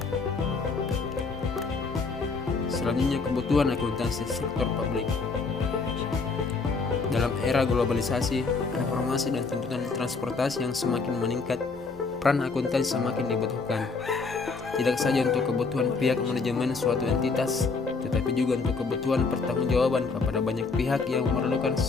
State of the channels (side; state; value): right; quieter; 4.4 dB